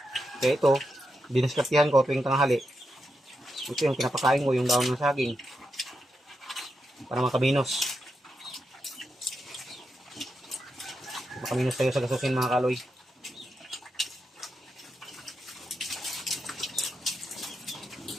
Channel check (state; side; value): normal; both; correlation 0.85